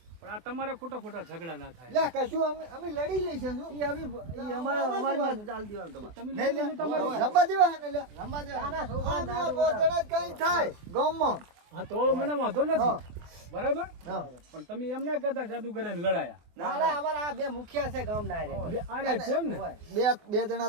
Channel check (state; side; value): late; left; 24 ms